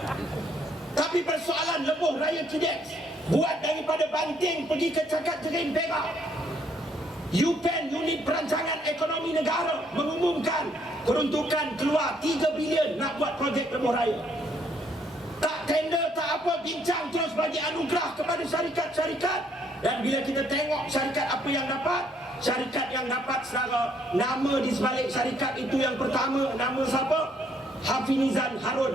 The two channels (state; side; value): normal; both; correlation 0.69